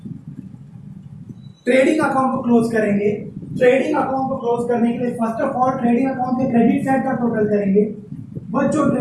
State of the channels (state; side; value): identical; both; correlation 1.00